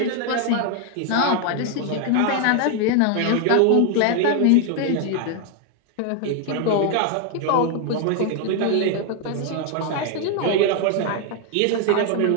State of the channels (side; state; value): both; different; correlation 0.00